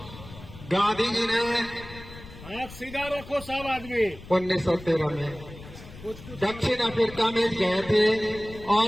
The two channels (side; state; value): left; noise; rumble, 16 dB below the sound